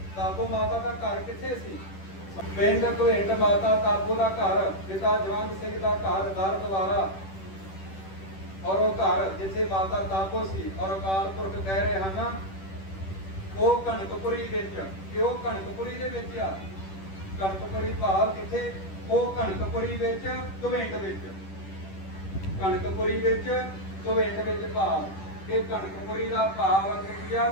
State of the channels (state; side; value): late; right; 10 ms